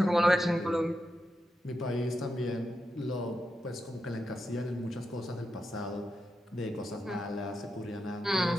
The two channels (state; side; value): normal; both; correlation 0.87